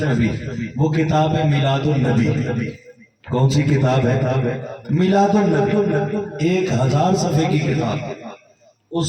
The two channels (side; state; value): both; identical; correlation 1.00